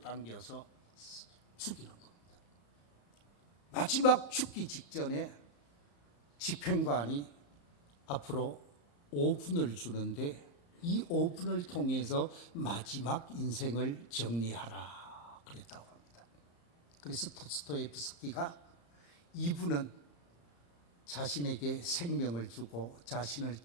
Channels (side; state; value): right; late; 34 ms